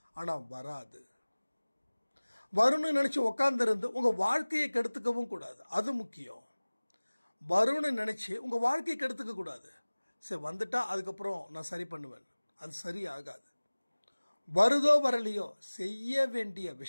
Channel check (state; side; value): inverted; both; correlation -1.00